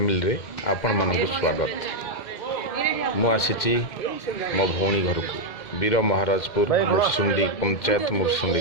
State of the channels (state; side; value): late; right; 2.1 ms